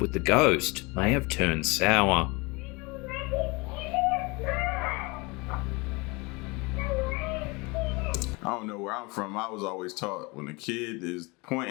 the ghost may have turned sour. I don't know where I'm from. I was always taught when a kid is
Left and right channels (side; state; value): right; quieter; 26.6 dB